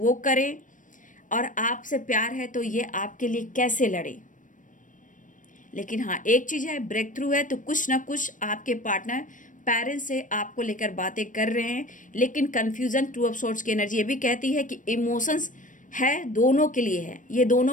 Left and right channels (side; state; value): right; late; 0.38 ms